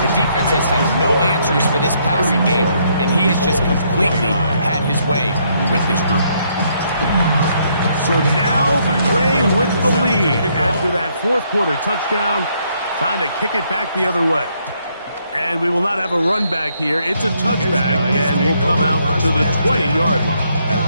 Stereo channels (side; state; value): both; inverted; correlation -0.72